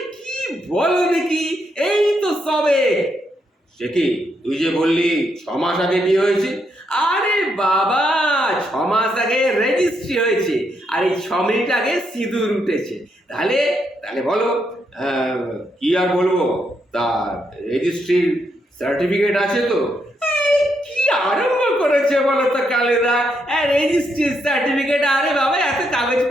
কি বলো দেখি, এই তো সবে। সে কি, তুই যে বললি 6 মাস আগে বিয়ে হয়েছে? আরে বাবা, 6 মাস আগে রেজিস্ট্রি হয়েছে, আর এই 6 মিনিট আগে সিঁদুর উঠেছে। তাহলে তাহলে বলো, আহ, কি আর বলবো। তা রেজিস্ট্রির সার্টিফিকেট আছে তো? এই, কি আরম্ভ করেছে বলো তো কালেদা। রেজিস্ট্রির সার্টিফিকেট? আরে বাবা, এত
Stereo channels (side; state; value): both; normal; correlation 0.78